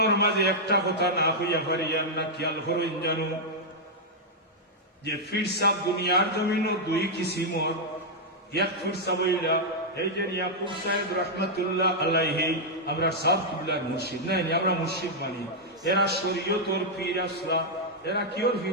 মাঝে একটা কথা না হইয়া পারিয়ার না খেয়াল করেন জানো যে ফিরসাব দুনিয়ার জমিন 2 কিসিমর এক ফিরসাব হইলা এই যে ইয়াকুব সাহেব রহমতুল্লাহ আলাইহি আমরা সব কিবলার মুর্শিদ নাই আমরা মুর্শিদ মানি এরা শরীয়তর পীর আসলা এরা কিওর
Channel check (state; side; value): normal; both; correlation -0.05